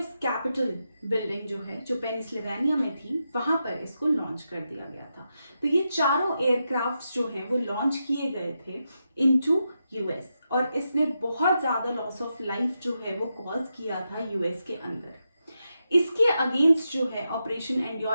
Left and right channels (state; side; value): inverted; both; correlation -0.86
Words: कैपिटल बिल्डिंग जो है जो पेनिसिल्वेनिया में थी, वहां पर इसको लॉन्च कर दिया गया था। तो ये चारों एयरक्राफ्ट्स जो हैं वो लॉन्च किए गए थे इनटू यूएस, और इसने बहुत ज्यादा लॉस ऑफ लाइफ जो है वो कॉज किया था यूएस के अंदर। इसके अगेंस्ट जो है ऑपरेशन